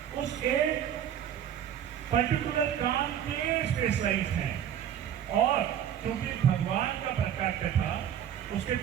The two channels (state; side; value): quieter; left; 9.6 dB